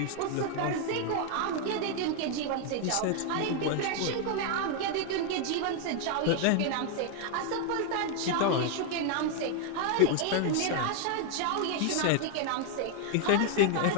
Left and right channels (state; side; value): different; both; correlation 0.00